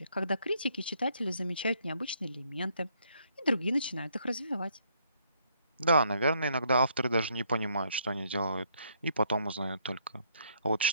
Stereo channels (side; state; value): both; inverted; correlation -0.69